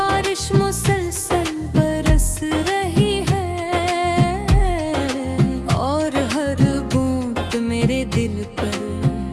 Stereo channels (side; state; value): both; identical; correlation 1.00